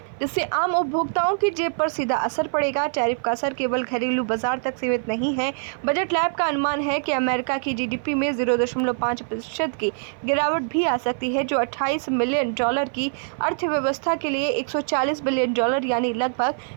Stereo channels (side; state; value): left; silent; 56 dB below the other